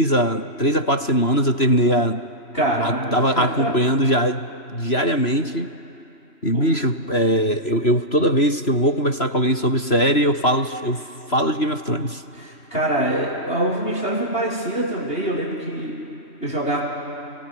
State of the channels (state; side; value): late; right; 3.0 ms